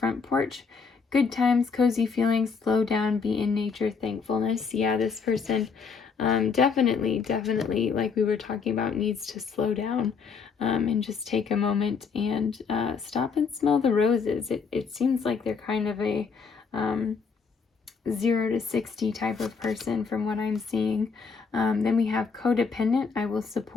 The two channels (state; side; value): quieter; right; 5.4 dB